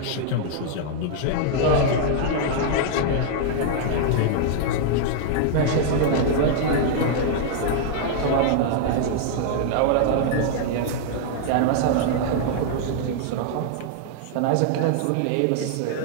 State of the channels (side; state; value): both; different; correlation -0.01